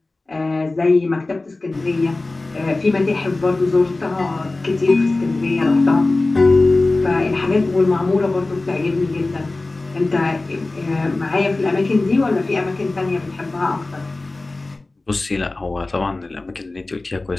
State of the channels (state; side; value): quieter; right; 3.2 dB